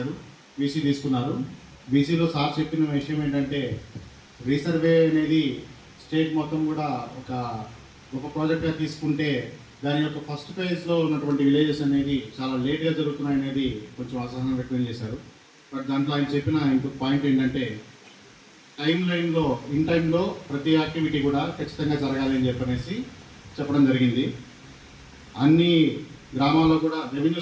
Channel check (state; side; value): identical; both; correlation 1.00